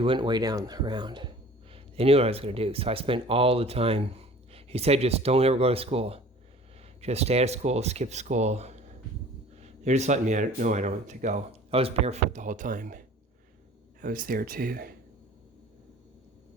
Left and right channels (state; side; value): normal; both; correlation 0.47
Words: went way down around. They knew what I was going to do, so I spent all the time. He said, just don't ever go to school. Just stay out of school, skip school. They're just letting me know I don't have to go. I was barefoot the whole time. I was there too,